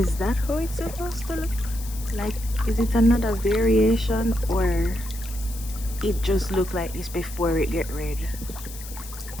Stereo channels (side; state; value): left; noise; hiss, 14 dB below the sound